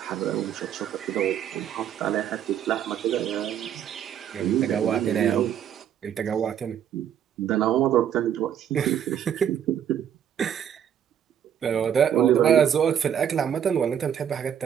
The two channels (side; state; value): left; quieter; 9.3 dB